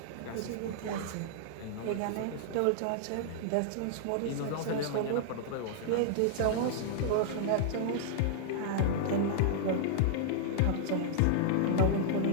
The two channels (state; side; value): different; both; correlation -0.01